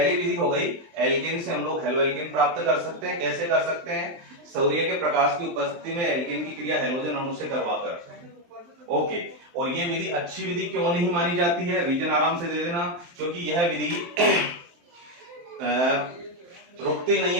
विधि हो गई, एल्केन से हम लोग हेलो एल्केन प्राप्त कर सकते हैं। कैसे कर सकते हैं, सूर्य के प्रकाश की उपस्थिति में एल्केन की क्रिया हेलोजन अणु से करवाकर। ओके, और ये विधि अच्छी विधि क्यों नहीं मानी जाती है, रीजन आराम से दे देना, क्योंकि यह विधि रुकती नहीं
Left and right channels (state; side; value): late; left; 23 ms